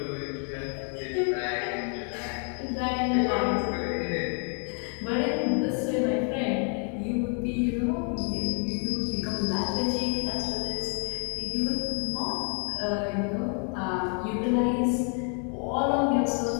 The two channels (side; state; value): right; quieter; 39.3 dB